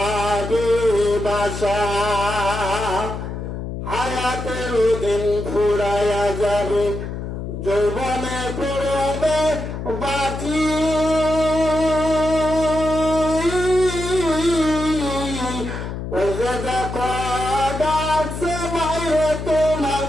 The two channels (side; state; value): left; noise; hum, 6 dB below the sound